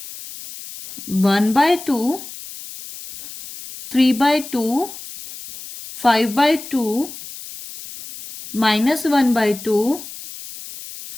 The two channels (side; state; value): left; noise; hiss, 14 dB below the sound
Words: 1 by 2, 3 by 2, 5 by 2, minus 1 by 2,